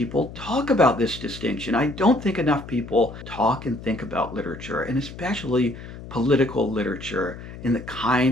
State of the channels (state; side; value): noise; left; hum, 13 dB below the sound